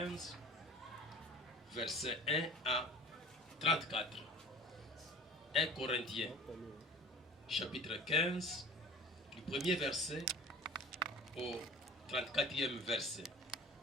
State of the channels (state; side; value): normal; both; correlation 0.43